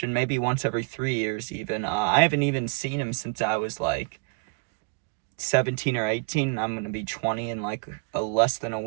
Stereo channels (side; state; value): left; quieter; 35.0 dB